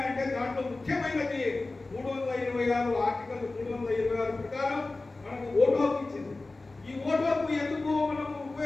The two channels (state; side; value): quieter; right; 3.3 dB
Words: అంటే దాంట్లో ముఖ్యమైనది 326 ఆర్టికల్ 326 ప్రకారం మనకు ఓటు హక్కు ఇచ్చింది. ఈ ఓటు హక్కు ఎందుకు మనం